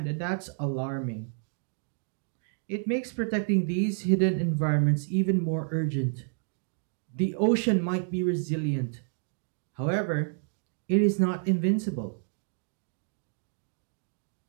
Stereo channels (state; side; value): silent; left; digital silence